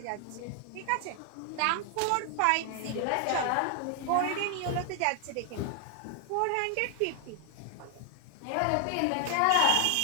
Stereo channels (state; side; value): different; both; correlation 0.00